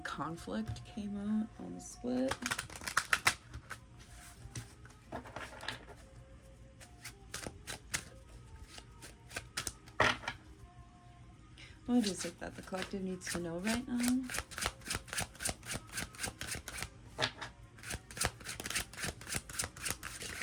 conflict came out on the split. What is it that the collective needs to know right now?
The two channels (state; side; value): identical; both; correlation 1.00